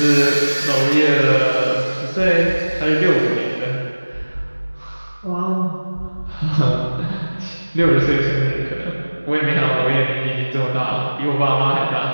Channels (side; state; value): both; inverted; correlation -1.00